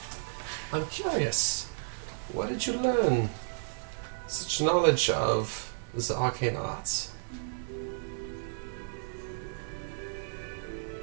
I'm curious. Where did you learn such knowledge of the arcane arts?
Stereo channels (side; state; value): left; silent; 56 dB below the other